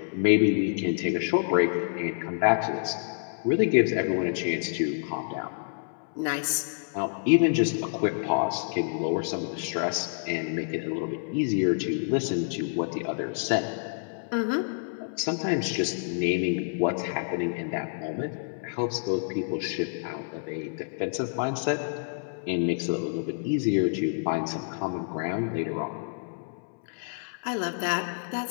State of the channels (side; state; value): right; silent; 59 dB below the other